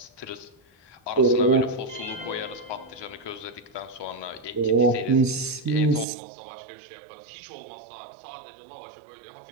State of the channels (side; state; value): left; drops out; at 6.1 s